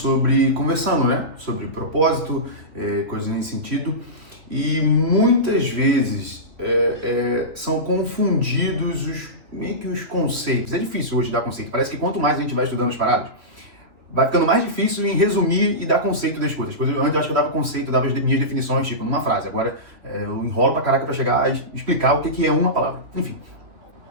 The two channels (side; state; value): left; late; 2.8 ms